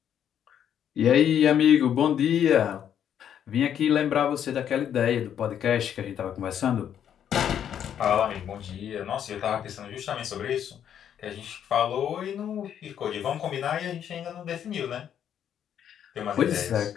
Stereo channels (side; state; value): right; quieter; 9.4 dB